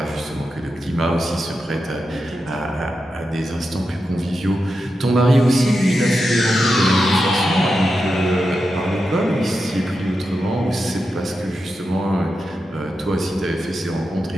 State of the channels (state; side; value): normal; both; correlation 0.89